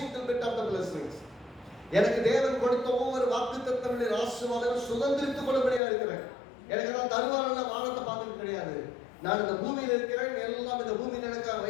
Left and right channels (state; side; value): drops out; right; at 5.8 s